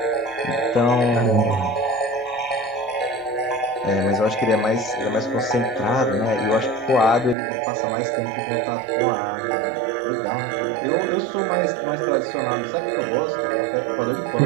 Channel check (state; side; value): drops out; left; at 7.4 s